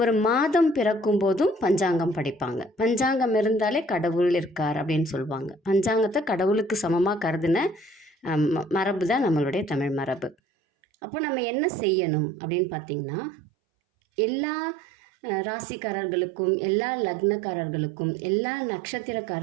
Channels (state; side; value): drops out; left; at 10.4 s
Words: மாதம் பிறக்கும் போதும் பஞ்சாங்கம் படிப்பாங்க. பஞ்சாங்கம் இருந்தாலே கடவுள் இருக்கார் அப்படின்னு சொல்லுவாங்க. பஞ்சாங்கத்தை கடவுளுக்கு சமமாக கருதின மரபு தான் நம்மளுடைய தமிழ் மரபு. அப்போ நம்ம என்ன செய்யணும் அப்படின்னு பார்த்திங்கன்னா, எல்லா ராசிக்காரர்களுக்கும், எல்லா லக்னக்காரர்களுக்கும், எல்லா